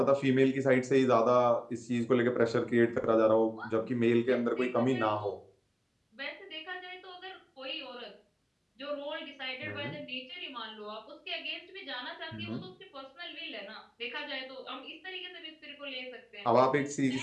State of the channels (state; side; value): identical; both; correlation 1.00